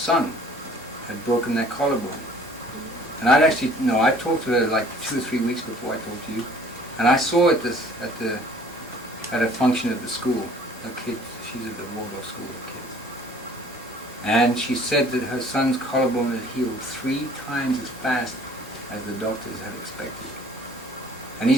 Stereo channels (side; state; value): both; normal; correlation 0.53